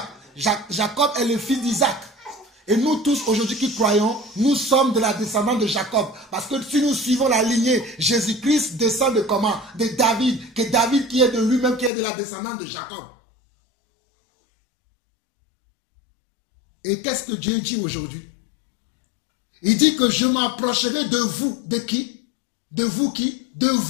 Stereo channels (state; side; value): drops out; right; at 11.9 s